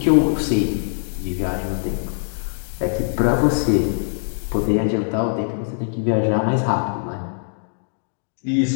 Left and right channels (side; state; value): right; silent; digital silence